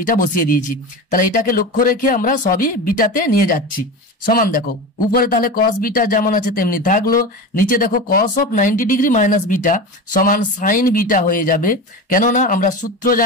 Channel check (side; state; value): both; normal; correlation 0.26